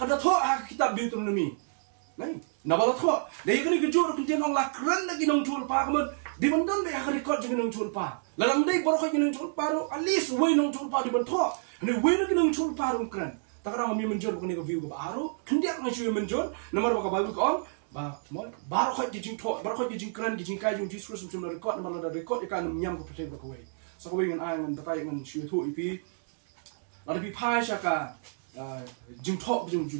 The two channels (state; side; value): silent; left; digital silence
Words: da tho ha kitab Deuteronomy nai nabala tho dei kani gejur kun tiang la kran lagi nong chul pa kamon di bandon be ha record jeng nong chul pa lalam dei boro kha jeng chul pa ro alis we nong chul pa di ban tho ne we nong chul pa ro kran takara mi menjor ko ne ko view ko aro kendiak ngai chu menjor nomor ba ka Bible ko ba mo baro kha jeng tho baro kha jeng kran jeng kai jeng Jesus chum record nomor la record ikan nyam ko protect ko we so ko we ngan ai ngan tatai ngan chu thu ipi la pi phai sha ka jeng tho jeng